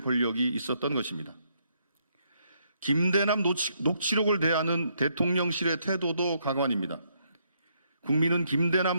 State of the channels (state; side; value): inverted; both; correlation -0.74